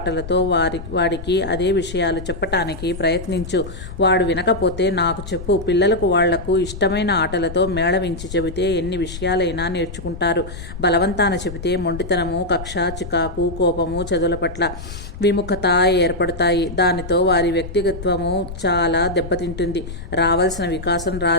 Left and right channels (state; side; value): noise; left; rumble, 11 dB below the sound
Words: వాడికి అదే విషయాలు చెప్పటానికి ప్రయత్నించు. వాడు వినకపోతే నాకు చెప్పు. పిల్లలకు వాళ్లకు ఇష్టమైన ఆటలతో మేళవించి చెబితే ఎన్ని విషయాలైనా నేర్చుకుంటారు. బలవంతాన చెబితే మొండితనము, కక్ష, చికాకు, కోపము, చదువుల పట్ల విముఖత ఏర్పడతాయి. దానితో వారి వ్యక్తిగత్వము చాలా దెబ్బతింటుంది. రావాల్సిన వికాసం